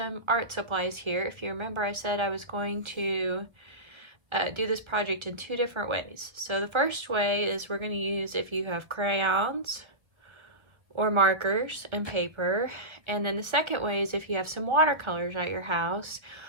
art supplies here. If you remember, I said I was going to do this project in two different ways. So the first way is we're going to use if you have crayons or markers and paper. And then the second way is if you have some watercolors at your house,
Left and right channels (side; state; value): left; late; 1.2 ms